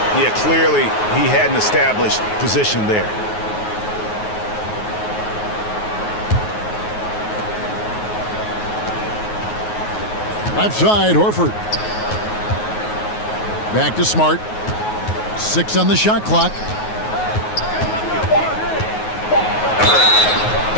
Yeah, clearly he had an established position there. Left side, Horford. Back to Smart. 6 on the shot clock.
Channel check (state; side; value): late; right; 9.4 ms